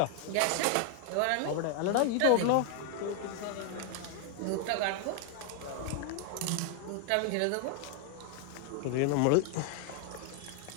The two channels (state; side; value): different; both; correlation 0.00